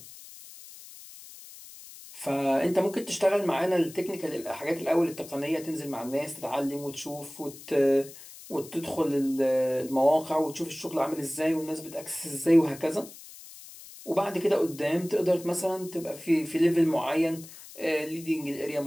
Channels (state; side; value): noise; left; hiss, 17 dB below the sound